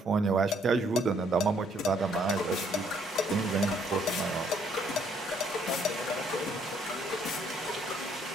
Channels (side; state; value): both; normal; correlation 0.66